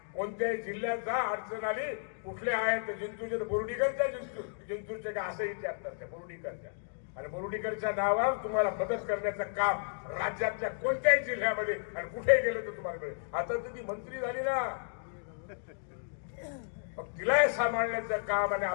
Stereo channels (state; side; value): silent; right; digital silence